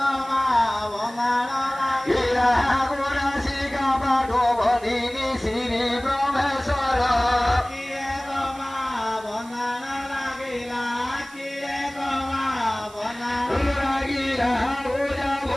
বনানো লাগিলা গোরা শিকা পাঠো বদিনি শ্রী ব্রহ্মেশ্বর কিয়ে গমা বনানো লাগিলা কিয়ে গমা বনানো লাগিলা গোরা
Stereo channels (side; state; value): right; noise; hiss, 22 dB below the sound